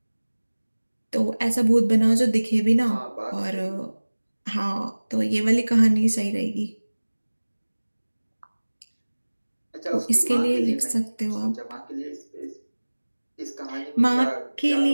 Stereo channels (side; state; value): both; inverted; correlation -1.00